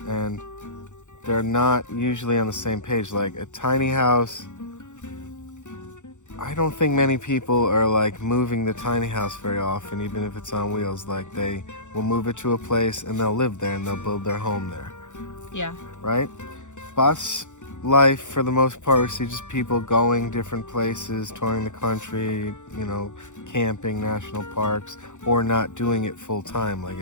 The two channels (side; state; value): right; late; 0.85 ms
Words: and they're not usually on the same page. Like a tiny house, I don't think many people are like moving the tiny house very often, even if it's on wheels. Like they will move it to a place and they'll live there and they'll build their home there. Yeah. Right? Bus life, for the most part, we see just people going different places, touring the country, you know, camping, national parks, or not doing it full time. Like